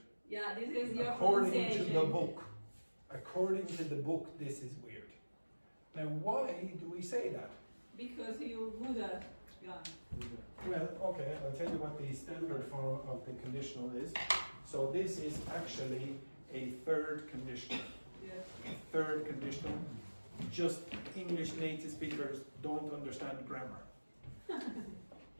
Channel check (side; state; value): both; inverted; correlation -1.00